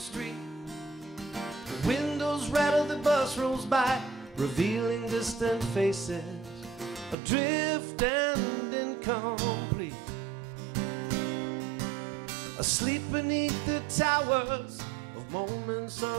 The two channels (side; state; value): left; drops out; at 7.2 s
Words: The windows rattle, the bus rolls by, revealing distant faces, adrift and incomplete. Asleep beneath the towers of moments